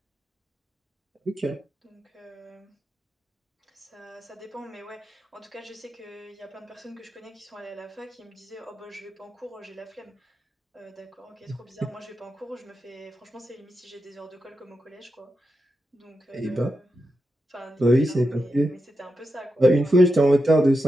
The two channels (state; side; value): normal; both; correlation 0.88